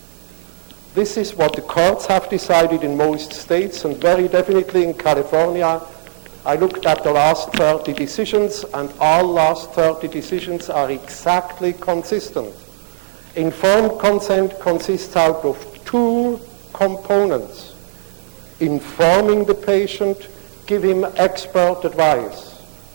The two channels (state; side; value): silent; left; digital silence